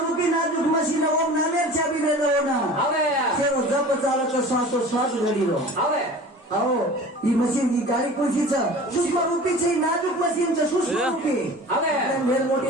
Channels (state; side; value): normal; both; correlation 0.40